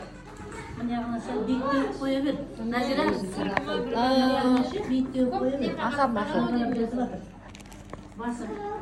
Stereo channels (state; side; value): identical; both; correlation 1.00